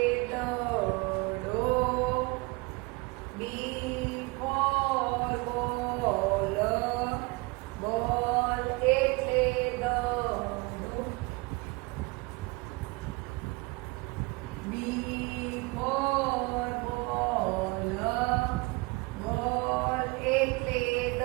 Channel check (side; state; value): left; quieter; 26.4 dB